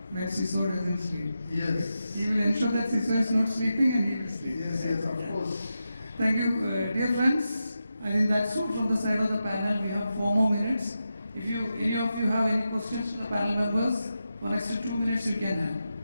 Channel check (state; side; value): inverted; both; correlation -0.89